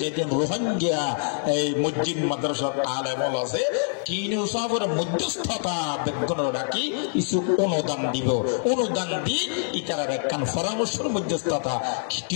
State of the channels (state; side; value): silent; right; digital silence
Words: যেদিন রোহিঙ্গা এই মসজিদ মাদ্রাসার আলেমল আছে তিন সবর মধ্যস্থতা বেগুন রাখি কিছু অনুদান দিব অনুদান দিয়ে ইতার একখান পরামর্শের মধ্যস্থতা